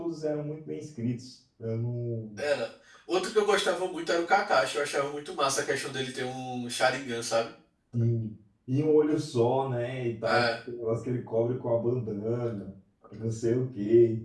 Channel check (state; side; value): identical; both; correlation 1.00